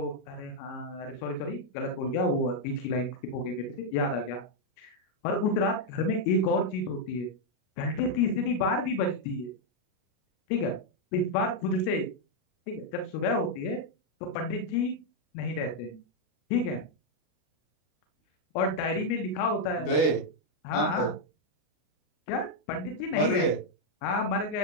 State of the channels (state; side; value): late; right; 32 ms